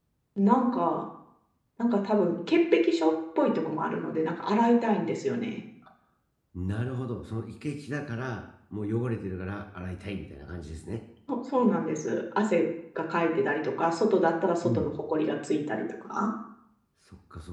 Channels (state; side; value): identical; both; correlation 1.00